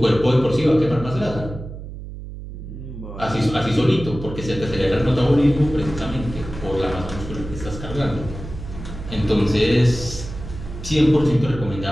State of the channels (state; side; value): noise; right; hum, 11 dB below the sound